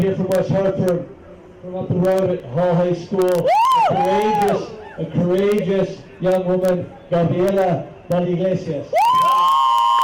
here from West Hartford, from up the road at Hall High School, a courageous young woman, Gabriela Iglesias.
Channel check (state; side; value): identical; both; correlation 1.00